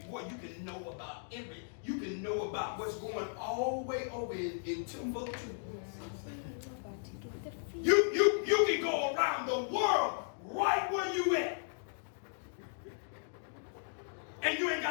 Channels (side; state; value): right; silent; digital silence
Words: know about you can know about what's going all the way over in Timbuktu. You can go around the world right where you at. And you ain't